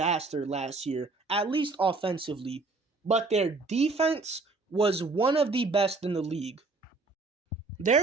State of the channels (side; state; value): left; quieter; 3.7 dB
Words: last year, at least offensively, but their defense was one of the best in the league.